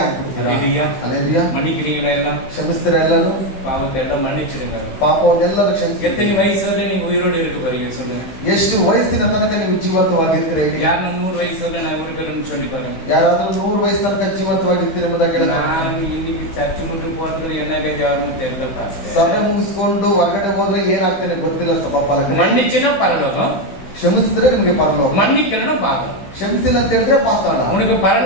ಅಲ್ಲೇಲೂಯಾ. மன்னிக்கிறீங்களா எல்லாம்? ಕ್ಷಮಿಸ್ತೀರಾ ಎಲ್ಲರೂ? பாவத்தை எல்லாம் மன்னிச்சிடுங்க. ಪಾಪವನ್ನೆಲ್ಲರೂ ಕ್ಷಮಿಸಿ. எத்தனை வயசுல நீங்க உயிரோடு இருக்க போறீங்க சொல்லுங்க? ಎಷ್ಟು ವಯಸ್ಸಿನ ತನಕ ನೀವು ಜೀವಂತವಾಗಿರ್ತೀರಾ? யாரும் 100 வயசுல நான் இருக்கிறேன்னு சொல்லி பாருங்க. ಯಾರಾದ್ರೂ 100 ವಯಸ್ಸು ತನಕ ಜೀವಂತವಾಗಿರ್ತೀರಾ ಎಂಬುದಾಗಿ ಹೇಳಿದ್ರೆ, நான் இன்னைக்கு சர்ச்சு முட்டு போறதுல என்ன கேட்கணும் தெரியல. ಸಭೆ ಮುಗಿಸ್ಕೊಂಡು ಹೊರಗಡೆ ಹೋದ್ರೆ ಏನಾಗ್ತಾನೆ ಗೊತ್ತಿಲ್ಲ. ಸಭಾಪಾಲಕರು மன்னிச்சுன்னா பரலோகம், ಕ್ಷಮಿಸಿದ್ರೆ ನಿಮಗೆ ಪರಲೋಕ, மன்னிக்கலன்னா பாதம். ಕ್ಷಮಿಸಿಲ್ಲ ಅಂತ ಹೇಳಿದ್ರೆ ಪಾತಾಳ. உனக்கு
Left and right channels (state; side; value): late; right; 16 ms